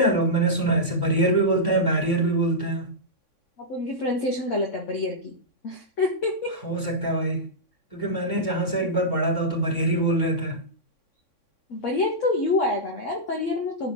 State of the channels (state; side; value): late; right; 3.6 ms